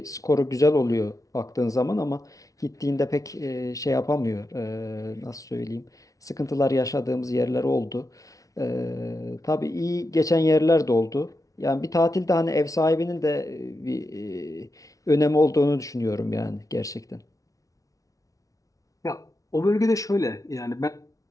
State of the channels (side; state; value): right; late; 0.17 ms